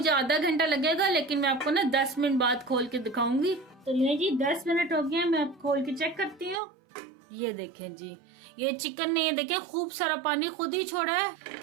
आधा घंटा लगेगा, लेकिन मैं आपको ना 10 मिनट बाद खोल के दिखाऊंगी। तो ये जी 10 मिनट हो गए, मैं अब खोल के चेक करती हूँ। ये देखें जी ये चिकन ने ये देखें खूब सारा पानी खुद ही छोड़ा है।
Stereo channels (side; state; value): left; drops out; at 6.6 s